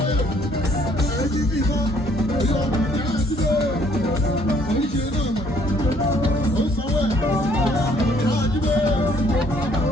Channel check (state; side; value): normal; both; correlation 0.63